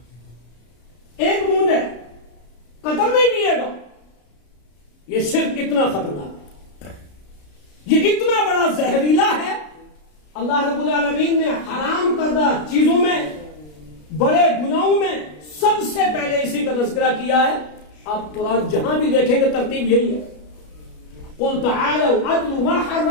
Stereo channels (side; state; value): right; late; 33 ms